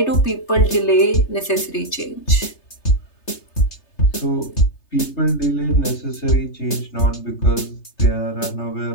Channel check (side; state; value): right; late; 3.3 ms